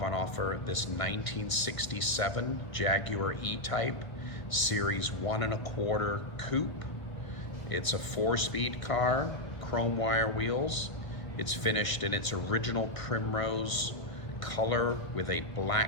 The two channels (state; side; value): late; right; 1.6 ms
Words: on offer this 1967 Jaguar E-Type Series 1 1/4 Coupe. It's a 4-speed car, chrome wire wheels. It's finished in its original Primrose color with a